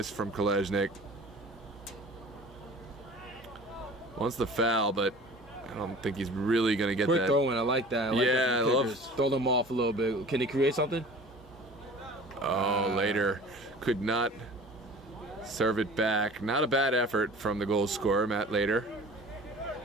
from Kolesnik? Wants the foul, but I don't think he's really going to get Quick that. throwing, I like that. I love. Throw them off a little bit. Can he create something? Later could not serve it back. Not a bad effort from the goal scorer, Matt Later.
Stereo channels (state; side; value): normal; both; correlation 0.43